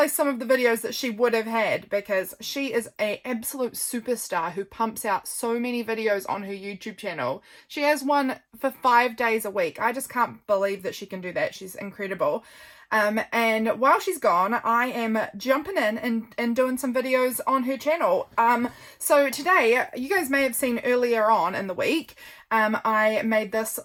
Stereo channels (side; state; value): both; identical; correlation 1.00